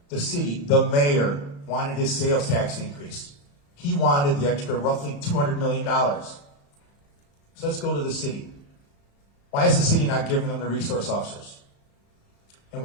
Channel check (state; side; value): late; right; 35 ms